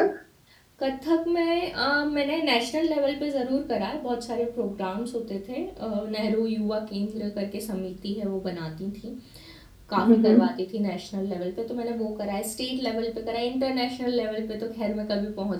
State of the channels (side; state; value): both; identical; correlation 1.00